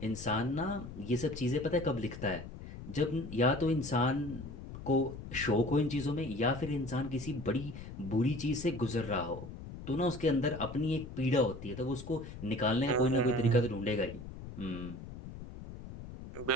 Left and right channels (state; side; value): noise; left; rumble, 11 dB below the sound